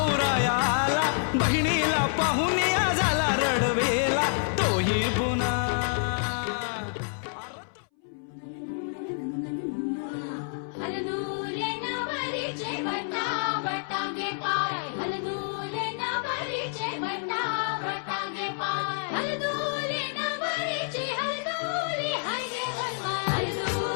आला बहिणीला पाहून या झाला रडवेला तोही पुन्हा हलदूले नवरीचे बटा बटागे पाय हलदूले नवरीचे बटा बटागे पाय हलदूले नवरीचे हलदूले हाय गे हनुमान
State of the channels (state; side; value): silent; right; 59 dB below the other